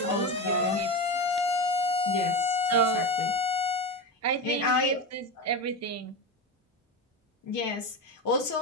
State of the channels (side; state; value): both; normal; correlation 0.19